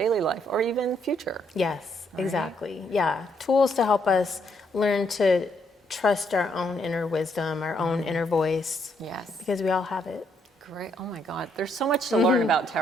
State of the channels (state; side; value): normal; both; correlation 0.73